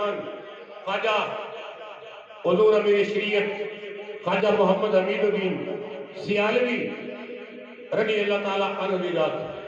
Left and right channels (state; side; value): identical; both; correlation 1.00